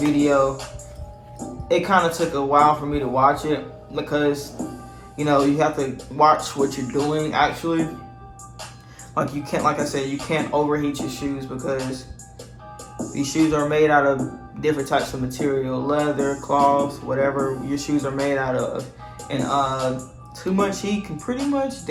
it kind of took a while for me to watch it, because you know, you have to watch what you're doing actually. Like you can't, like I said, you can't overheat your shoes, because these shoes are made out of different types of material, leather, cloth, whatever your shoes are made out of. And too much heat can pretty much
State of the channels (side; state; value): both; identical; correlation 1.00